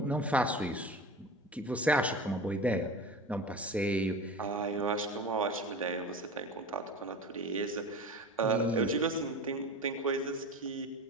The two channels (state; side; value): normal; both; correlation 0.32